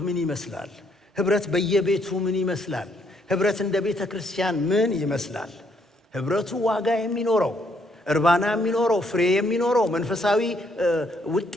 ምን ይመስላል? ህብረት በየቤቱ ምን ይመስላል? ህብረት እንደ ቤተ ክርስቲያን ምን ይመስላል? ህብረቱ ዋጋ የሚኖረው፣ እርባና የሚኖረው፣ ፍሬ የሚኖረው፣ መንፈሳዊ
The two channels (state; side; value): normal; both; correlation 0.71